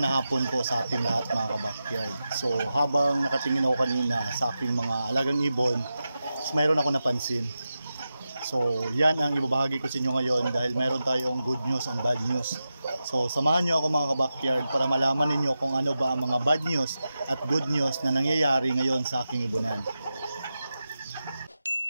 na hapon po sa ating lahat mga kabakyard. So habang nakatingin ako kanina sa aking mga alagang ibon, mayroon ako napansin. So yan ang ibabahagi ko sa inyo ngayon dahil mayroon tayong good news and bad news. So samahan nyo ako mga kabakyard para malaman ninyo kung ano ba ang mga bad news at good news na nangyayari ngayon sa aking ibunan.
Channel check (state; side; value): inverted; both; correlation -0.91